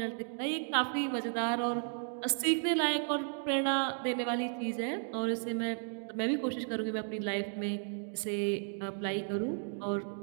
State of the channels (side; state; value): left; silent; 55 dB below the other